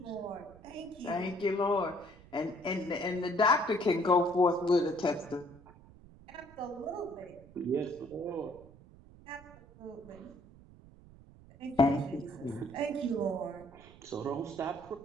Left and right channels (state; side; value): noise; right; rumble, 22 dB below the sound